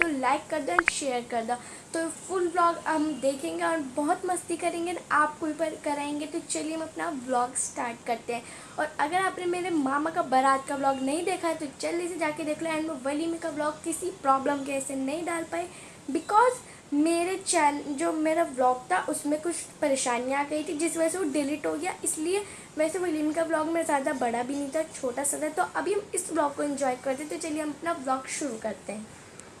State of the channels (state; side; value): identical; both; correlation 1.00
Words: लाइक कर दो एंड शेयर कर दो। तो फुल व्लॉग हम देखेंगे और बहुत मस्ती करेंगे, आपको भी कराएंगे। तो चलिए हम अपना व्लॉग स्टार्ट करते हैं। और अगर आपने मेरे मामा का बारात का व्लॉग नहीं देखा है तो जल्दी से जाके देख लो। एंड मैं वलीमे का व्लॉग किसी प्रॉब्लम के ऐसे नहीं डाल पाई, बिकॉज मेरे चैनल जो मेरा व्लॉग था उसमें कुछ परेशानियाँ आ गई थी, जिस वजह से वो डिलीट हो गया। इसलिए वैसे वलीमे का व्लॉग मेरा ज़्यादा बड़ा भी नहीं था, छोटा सा था। तो अभी हम इस व्लॉग को एंजॉय करते हैं। तो चलिए हम अपना व्लॉग शुरू करते हैं।